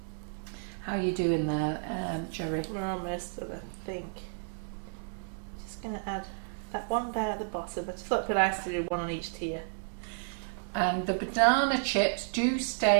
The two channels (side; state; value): left; silent; 57 dB below the other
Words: How are you doing there, Gerry? We're almost done, I think. Just going to add that one there at the bottom. I just thought it'd be nice to do one on each tier. And the banana chips do